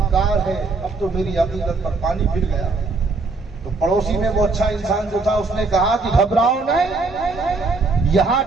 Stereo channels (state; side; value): quieter; left; 3.8 dB